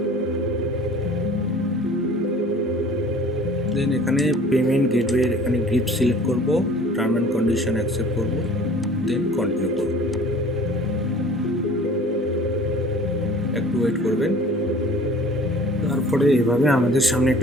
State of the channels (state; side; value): normal; both; correlation 0.47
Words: দেন এখানে পেমেন্ট গেটওয়ে, এখানে গ্রিপ সিলেক্ট করব, টার্ম অ্যান্ড কন্ডিশন অ্যাকসেপ্ট করব, দেন কন্টিনিউ করব। একটু ওয়েট করবেন। তারপরে এভাবে আমাদের সামনে